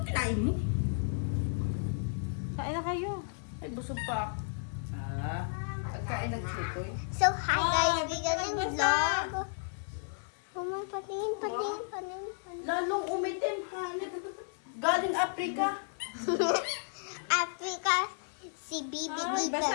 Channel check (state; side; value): silent; right; 56 dB below the other